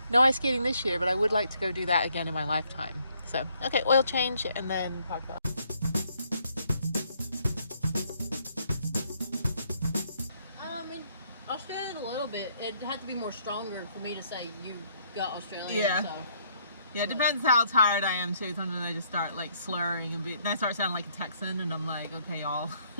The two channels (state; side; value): inverted; both; correlation -0.68